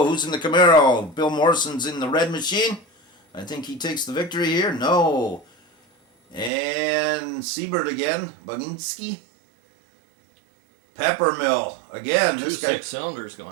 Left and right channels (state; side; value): drops out; left; at 6.5 s